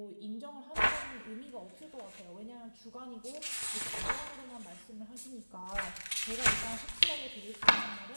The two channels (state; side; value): inverted; both; correlation -1.00